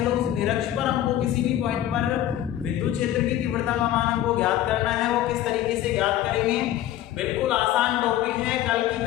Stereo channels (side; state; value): right; quieter; 12.6 dB